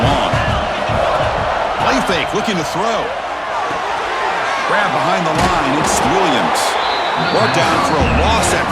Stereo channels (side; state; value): both; identical; correlation 1.00